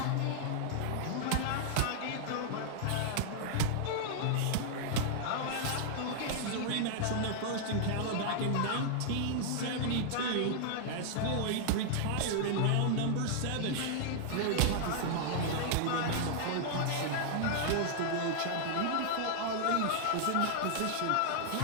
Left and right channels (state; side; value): different; both; correlation -0.01